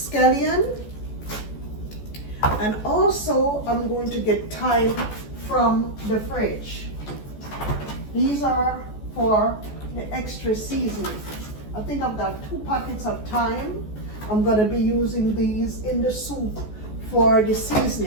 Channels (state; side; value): late; right; 14 ms